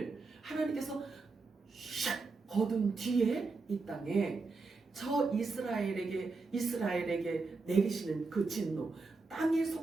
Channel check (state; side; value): quieter; left; 4.0 dB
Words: 하나님께서 샥 거둔 뒤에 이 땅에 저 이스라엘에게 내리시는 그 진노, 땅에